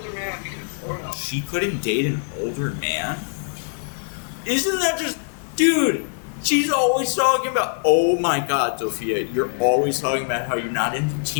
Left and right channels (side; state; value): right; silent; digital silence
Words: man because... She couldn't date an older man? Isn't that just... Dude... She's always talking about, oh my God, Tophia, you're always talking about how you're not into